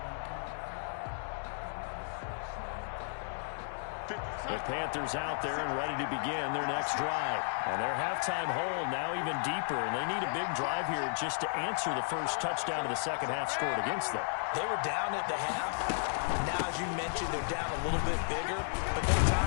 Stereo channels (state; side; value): silent; right; 55 dB below the other